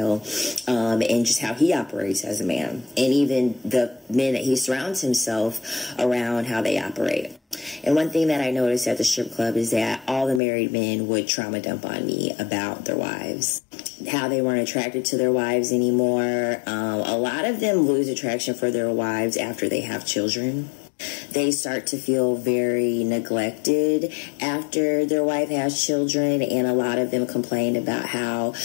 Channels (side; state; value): right; drops out; at 10.4 s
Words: and just how he operates as a man, and even the men that he surrounds himself around, how they operate. And one thing that I noticed at the strip club is that all the married men would trauma dump on me about their wives, how they weren't attracted to their wives anymore. A lot of them lose attraction for their wives after they have children. They start to feel very neglected after their wife has children, and a lot of them complained about how